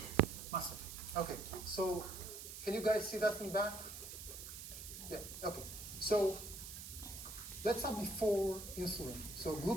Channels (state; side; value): noise; right; hiss, 10 dB below the sound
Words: muscle. Okay, so can you guys see that from back? Yeah, okay. So let's start before insulin. So